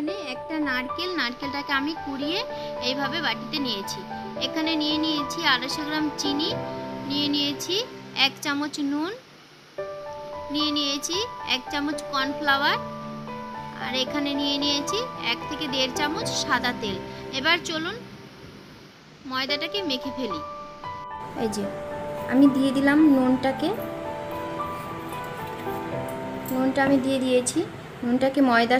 একটা নারকেল। নারকেলটাকে আমি কুড়িয়ে এইভাবে বাটিতে নিয়েছি। এখানে নিয়ে নিয়েছি 250 গ্রাম চিনি, নিয়ে নিয়েছি 1 চামচ নুন, নিয়ে নিয়েছি 1 চামচ কর্নফ্লাওয়ার আর এখানে নিয়ে নিয়েছি 1 থেকে 1.5 চামচ সাদা তেল। এবার চলুন ময়দাটাকে মেখে ফেলি। এই যে আমি দিয়ে দিলাম নুনটাকে, নুনটা আমি দিয়ে দিয়েছি। নুনটাকে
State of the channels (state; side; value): identical; both; correlation 1.00